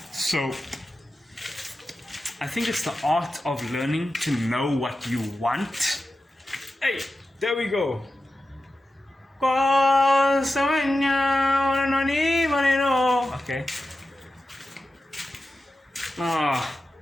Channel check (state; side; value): normal; both; correlation 0.92